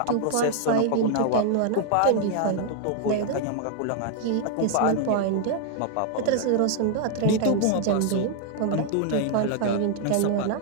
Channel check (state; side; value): different; both; correlation 0.00